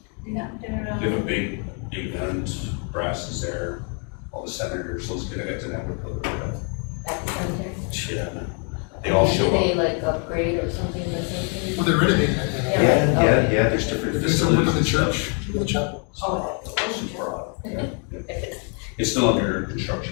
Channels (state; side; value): quieter; right; 38.9 dB